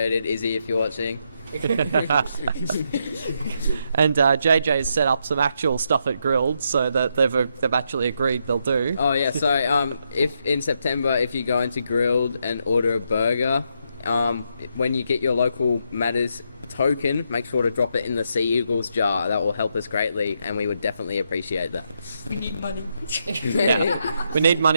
Izzy, if you're watching. And JJ's set up some actual stuff at Grilled, so that they've actually agreed they'll do. Oh yeah, so if in September, if you go into Grilled and order a burger, when you get your local Matters token, make sure to drop it in the Sea Eagles jar. That will help us greatly, and we would definitely appreciate that. We need money. Yeah. We need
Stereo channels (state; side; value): inverted; both; correlation -0.79